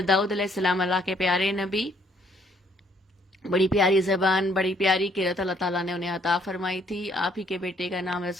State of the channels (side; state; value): both; normal; correlation 0.66